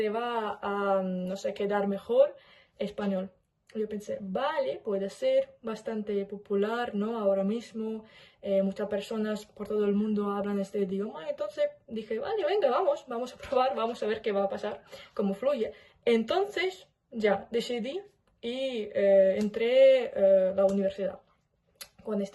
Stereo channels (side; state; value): both; identical; correlation 1.00